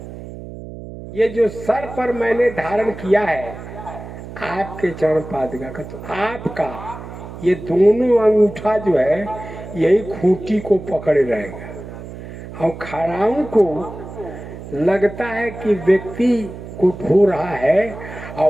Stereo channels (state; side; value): noise; right; hum, 12 dB below the sound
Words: ये जो सर पर मैंने धारण किया है आपके चरण पादुका का, तो आपका ये दोनों अंगूठा जो है यही खूंटी को पकड़े रहेगा। और खड़ाऊ को लगता है कि व्यक्ति को ढो रहा है,